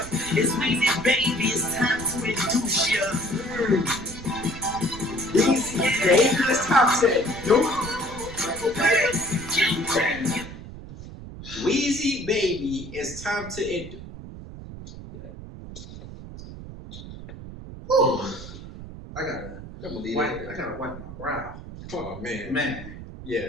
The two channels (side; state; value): right; noise; rumble, 13 dB below the sound